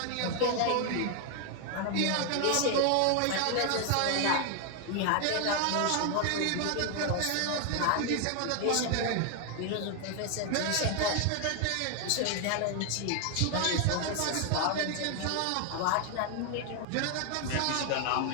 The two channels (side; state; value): both; different; correlation 0.00